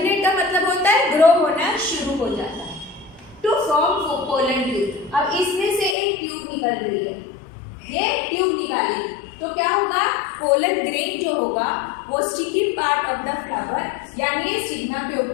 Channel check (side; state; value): right; drops out; at 6.0 s